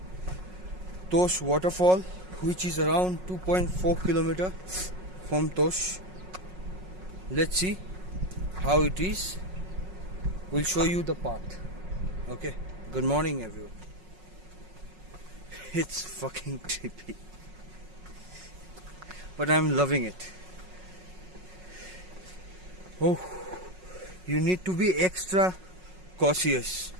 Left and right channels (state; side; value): late; left; 5.4 ms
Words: Tosh waterfall, which is around 2.4 kilometer from Tosh. Let's see how it is. We'll show you the path. Okay, good morning everyone. It's fucking trippy, but I'm loving it. Oh, you need to be extra cautious